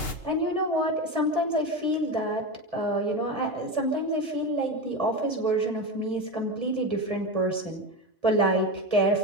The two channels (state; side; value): normal; both; correlation 0.19